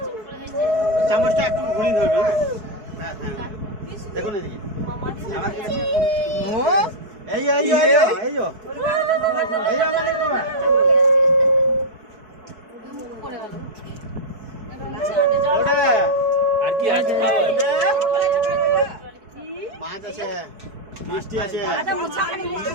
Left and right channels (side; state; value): left; late; 4.6 ms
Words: চামচটা একটু ঘুরিয়ে ধরবে হ্যাঁ। দেখুন এদিকে। ও এই মানে বাবা। আর কি আছে? মাছ আছে, মিষ্টি আছে।